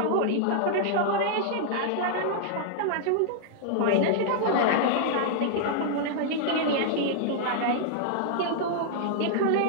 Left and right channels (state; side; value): different; both; correlation -0.01